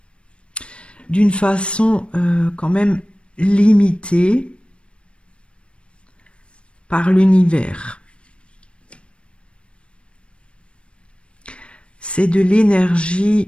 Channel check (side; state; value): right; late; 0.059 ms